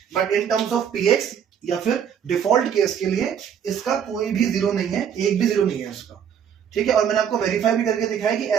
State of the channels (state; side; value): quieter; left; 8.3 dB